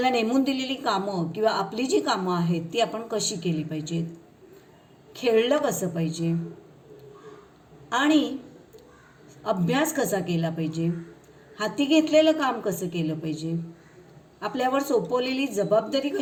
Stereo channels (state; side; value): identical; both; correlation 1.00